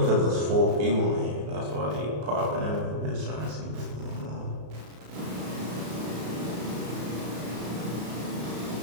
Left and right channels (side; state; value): left; late; 33 ms